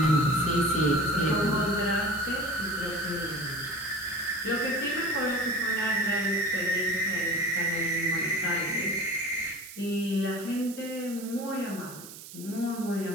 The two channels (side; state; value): right; noise; hiss, 14 dB below the sound